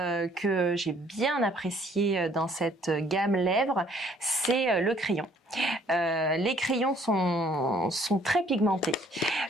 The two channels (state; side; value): normal; both; correlation 0.60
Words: j'ai bien apprécié dans cette gamme lèvres, c'est le crayon. Les crayons sont très pigmentés,